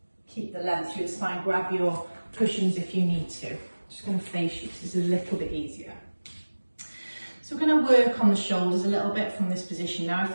keep the length through the spine, grab your cushions if you need to. Just going to face you, this is a little bit easier. So we're going to work on the shoulders a little bit from this position. Now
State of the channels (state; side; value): inverted; both; correlation -1.00